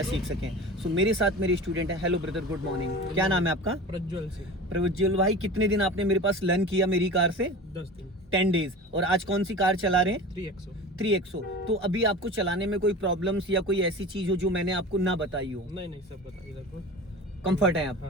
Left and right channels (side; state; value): both; normal; correlation 0.34